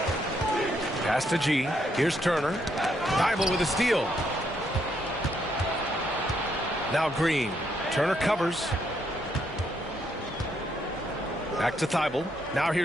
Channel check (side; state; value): both; normal; correlation 0.75